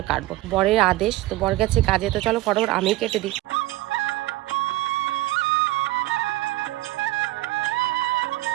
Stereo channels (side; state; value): left; quieter; 18.1 dB